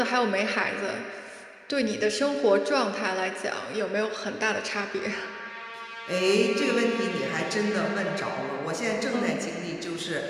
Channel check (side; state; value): both; identical; correlation 1.00